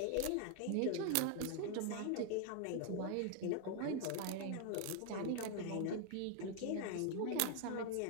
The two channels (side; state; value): both; different; correlation 0.00